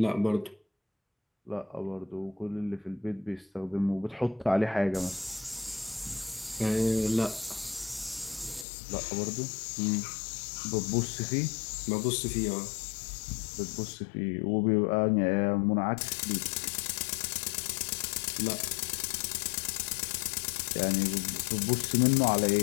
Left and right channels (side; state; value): right; drops out; at 8.7 s